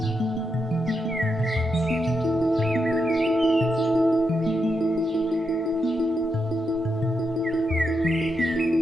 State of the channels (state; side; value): normal; both; correlation 0.84